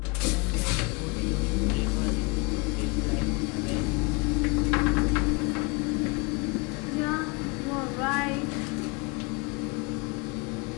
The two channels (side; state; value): right; quieter; 28.8 dB